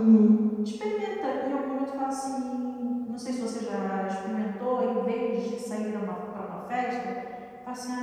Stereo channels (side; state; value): both; identical; correlation 1.00